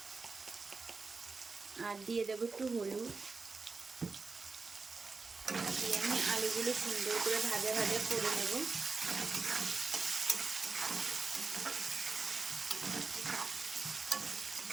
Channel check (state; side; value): quieter; left; 4.3 dB